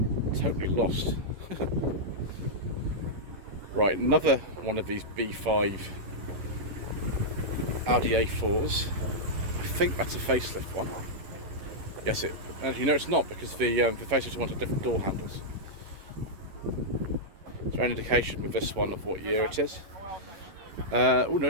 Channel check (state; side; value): late; left; 11 ms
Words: Totally lost. Right, another one of these B5 Audi A4s. I think that's a facelift one. Yes, you know it's not, because the facelift one had different door handles. Is there any indication with this one of what year it is? Oh no,